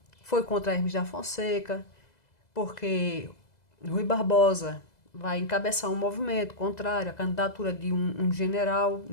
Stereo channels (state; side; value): late; right; 2.0 ms